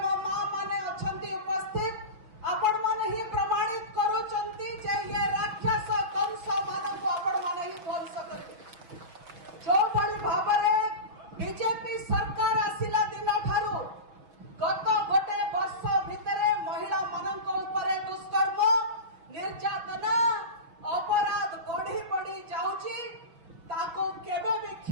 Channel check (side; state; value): left; late; 6.1 ms